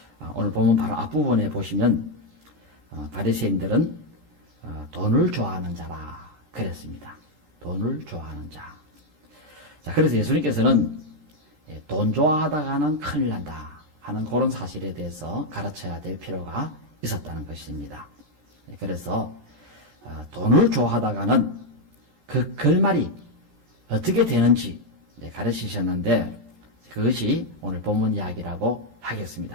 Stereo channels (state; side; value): late; left; 13 ms